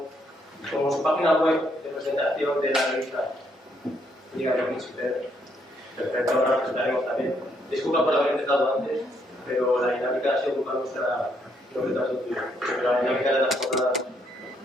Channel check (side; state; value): both; normal; correlation 0.73